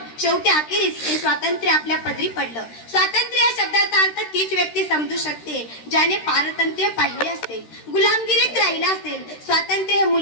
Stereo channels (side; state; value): right; late; 13 ms